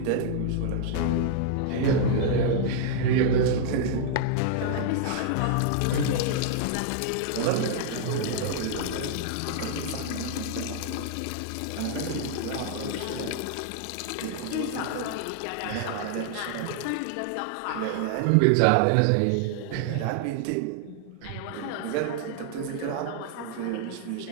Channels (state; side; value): different; both; correlation -0.01